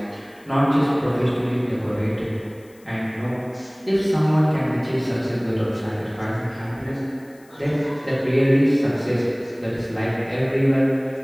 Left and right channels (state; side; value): noise; left; hiss, 29 dB below the sound